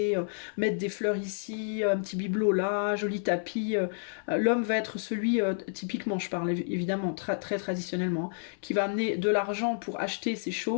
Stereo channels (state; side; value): silent; right; 58 dB below the other